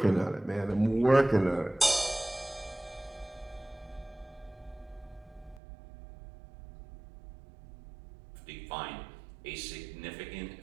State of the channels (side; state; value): left; drops out; at 5.6 s